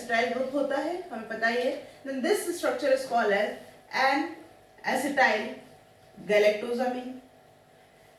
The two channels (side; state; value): both; identical; correlation 1.00